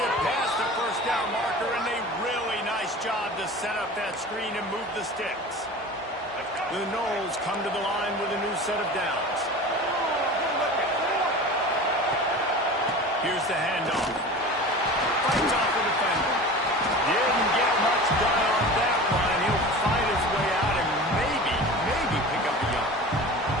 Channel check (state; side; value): normal; both; correlation 0.35